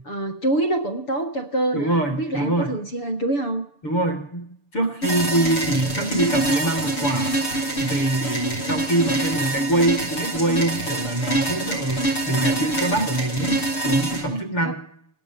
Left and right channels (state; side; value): late; right; 6.9 ms